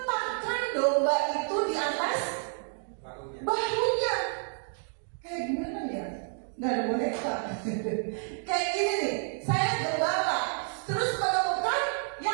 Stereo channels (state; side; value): silent; left; 58 dB below the other